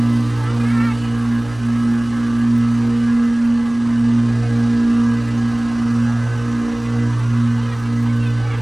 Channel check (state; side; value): noise; right; hum, 20 dB below the sound